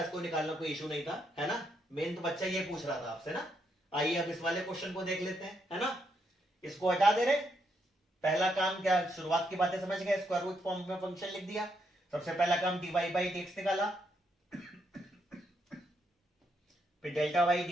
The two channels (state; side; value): normal; both; correlation 0.78